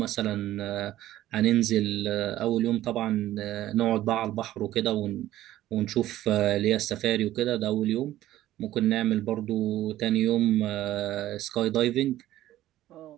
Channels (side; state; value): left; quieter; 14.2 dB